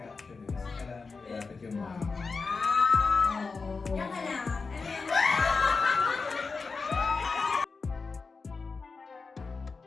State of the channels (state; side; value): quieter; right; 4.5 dB